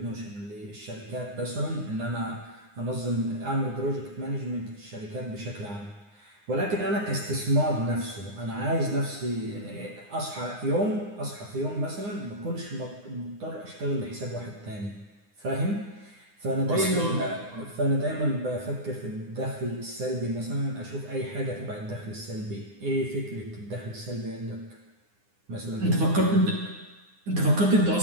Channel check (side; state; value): left; late; 9.8 ms